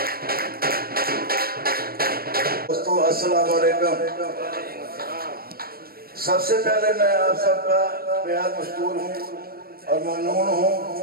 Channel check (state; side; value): late; left; 0.44 ms